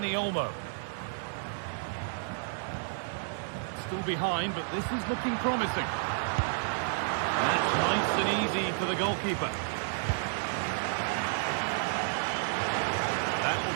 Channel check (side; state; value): left; silent; digital silence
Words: Olmo. Still behind, but this is looking promising. That's nice and easy for the goalkeeper. That